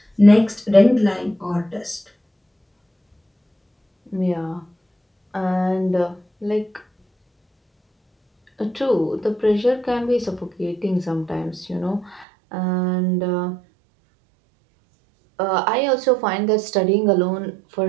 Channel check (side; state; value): left; drops out; at 12.2 s